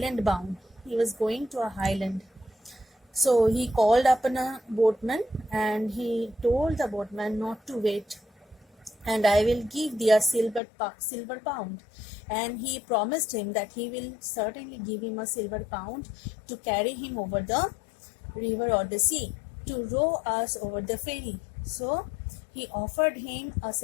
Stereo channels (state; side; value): drops out; right; at 10.6 s